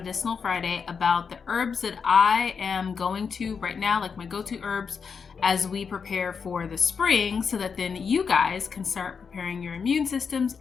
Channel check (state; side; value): quieter; right; 5.9 dB